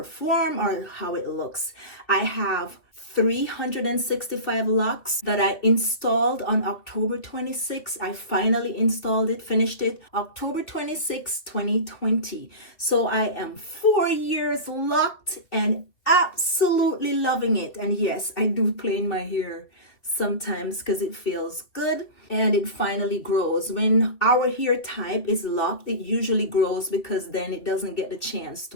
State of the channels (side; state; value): right; late; 2.9 ms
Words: or how it looks. I have 365 locks that I installed on October 26. I finally installed it, finished it October 26, 2020. So I am 4 years locked and absolutely loving it. And yes, I do play in my hair sometimes because it feels good and it finally grows. When our hair type is locked, it usually grows because then it doesn't get the chance